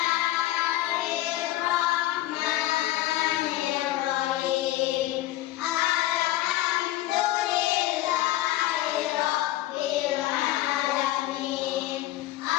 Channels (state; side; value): quieter; right; 15.7 dB